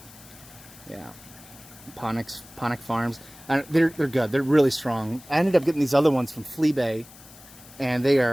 Yeah, Ponic Farms. They're good. They're really strong. I ended up getting these other ones from Fleabay, and they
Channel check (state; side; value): noise; left; hiss, 21 dB below the sound